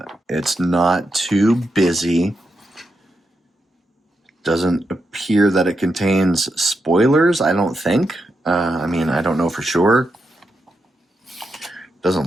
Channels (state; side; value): normal; both; correlation 0.85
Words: It's not too busy. Doesn't appear that it contains spoilers, I don't think. I mean, I don't know for sure.